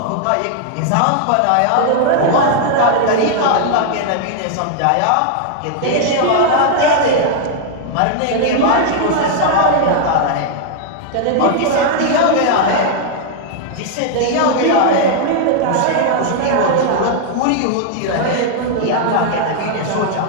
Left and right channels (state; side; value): different; both; correlation 0.00